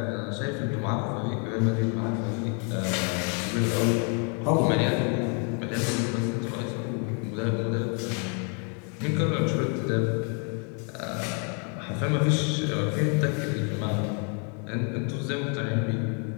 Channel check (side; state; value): right; quieter; 39.0 dB